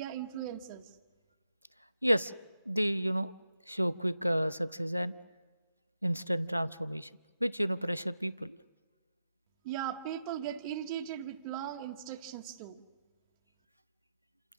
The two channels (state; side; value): inverted; both; correlation -0.88